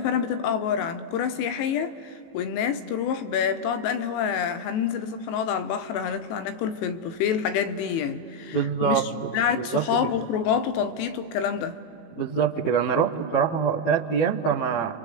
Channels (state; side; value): late; right; 19 ms